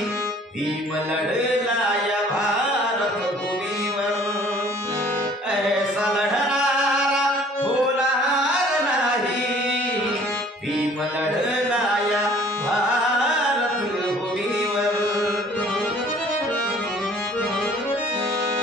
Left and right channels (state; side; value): normal; both; correlation 0.53